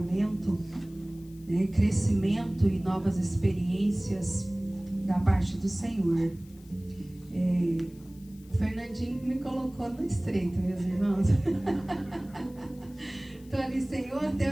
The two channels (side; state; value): left; noise; hiss, 27 dB below the sound